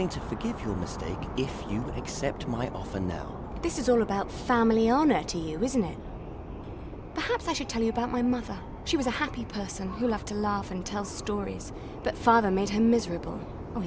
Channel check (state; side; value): identical; both; correlation 1.00